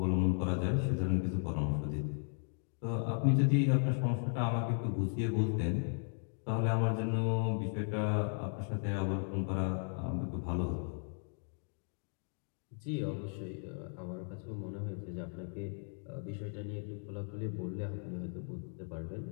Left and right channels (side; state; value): right; silent; 54 dB below the other